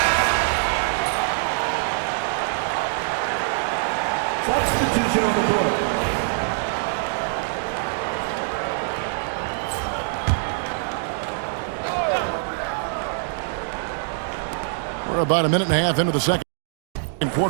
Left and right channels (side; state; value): left; silent; digital silence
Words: Substitution on the board. We're about a minute and a half into the second